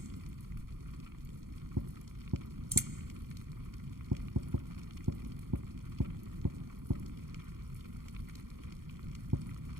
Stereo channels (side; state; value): left; late; 0.92 ms